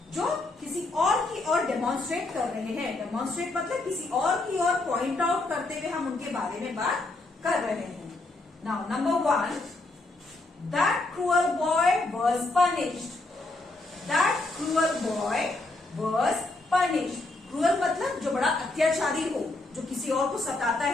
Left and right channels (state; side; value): quieter; right; 3.0 dB